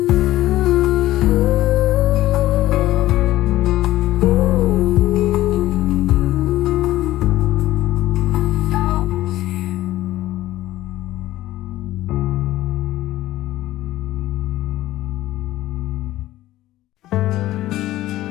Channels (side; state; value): right; quieter; 15.4 dB